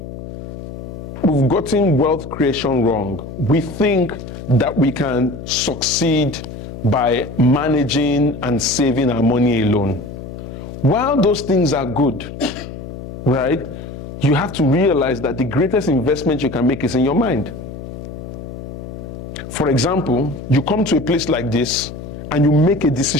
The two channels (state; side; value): noise; left; hum, 10 dB below the sound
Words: wealth creation wrong. We think that we can succeed by managing and saving our money alone. While those things are good, right, you have to realize that the greatest investment you can make is in your mind. For example, you come to a place like this and you make a